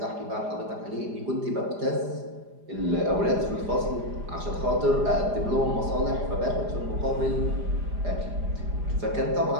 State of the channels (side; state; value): left; late; 4.9 ms